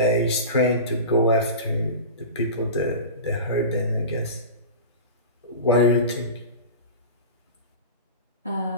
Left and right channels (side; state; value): both; inverted; correlation -0.30